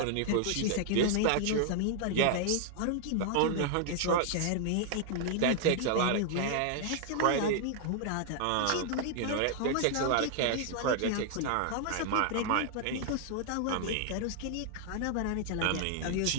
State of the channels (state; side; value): different; both; correlation 0.00